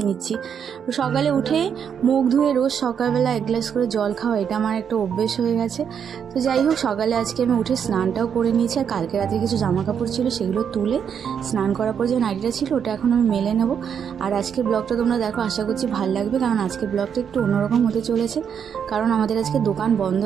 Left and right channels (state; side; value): quieter; left; 7.7 dB